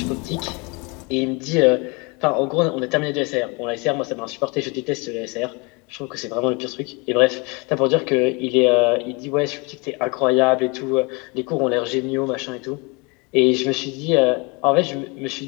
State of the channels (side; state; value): right; quieter; 29.2 dB